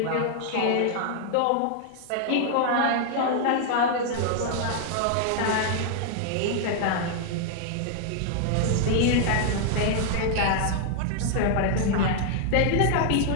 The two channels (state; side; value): different; both; correlation 0.00